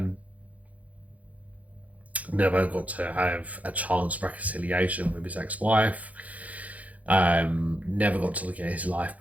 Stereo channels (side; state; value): left; late; 0.072 ms